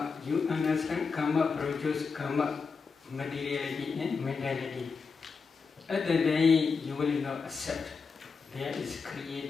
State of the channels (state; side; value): quieter; right; 5.1 dB